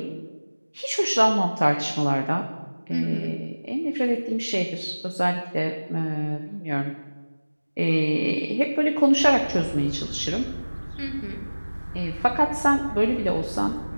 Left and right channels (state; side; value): inverted; both; correlation -1.00